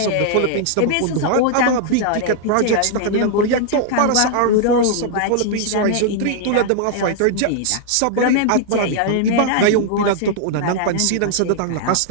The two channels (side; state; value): both; different; correlation -0.01